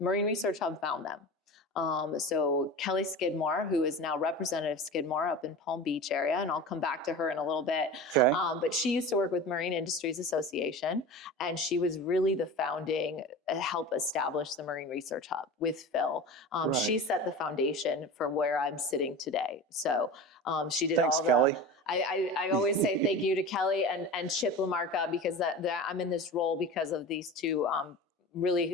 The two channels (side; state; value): both; normal; correlation 0.31